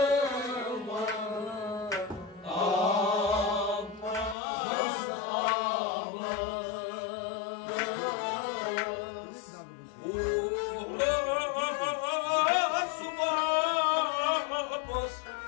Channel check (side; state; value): right; drops out; at 4.4 s